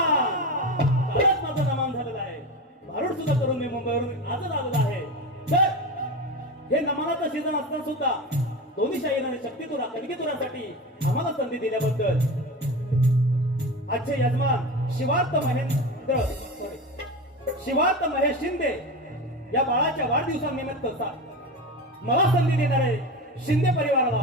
कालच माझं नमान झालेलं आहे, भारूड सुद्धा करून मी मुंबईवरून आजच आलेला आहे. तर हे नमानाचं सीझन असताना सुद्धा दोन्ही शाहीरांनी शक्तितुरा कणकीतुरासाठी आम्हाला संधी दिल्याबद्दल आजचे यजमान शिवार्थ महेश शिंदे या बाळाच्या वाढदिवसानिमित्त मला संधी देणारे शिंदे परिवाराला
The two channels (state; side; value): normal; both; correlation 0.25